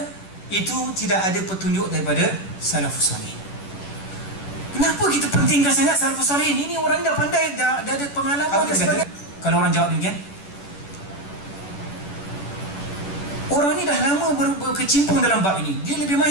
itu tidak ada petunjuk daripada salafus salihin. Kenapa kita pentingkan sangat salafus salihin? Ini orang dah pandai, dah ada pengalaman dan sebagainya. Kalau orang jawab demikian, orang ni dah lama berkecimpung dalam bab ini, dia lebih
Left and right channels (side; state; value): right; late; 10 ms